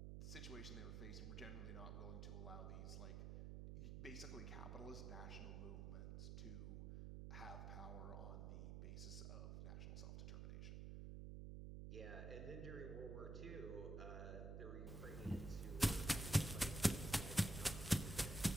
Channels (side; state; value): right; noise; hum, 6 dB below the sound